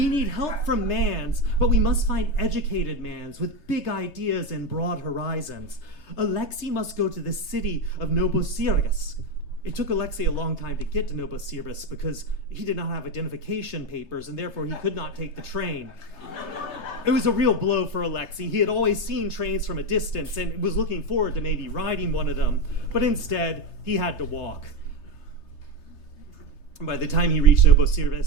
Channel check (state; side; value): late; right; 3.3 ms